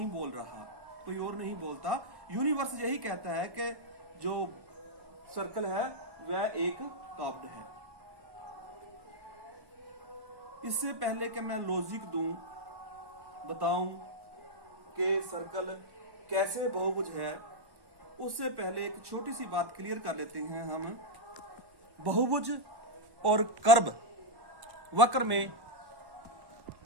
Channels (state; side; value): late; left; 1.1 ms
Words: बोल रहा, कोई और नहीं बोलता। यूनिवर्स यही कहता है कि जो सर्कल है वह एक कर्व्ड है। इससे पहले कि मैं लॉजिक दूं, बताऊं कि सर्कल कैसे बहुभुज है, उससे पहले एक छोटी सी बात क्लियर कर लेते हैं हम। बहुभुज और कर्व, वक्र में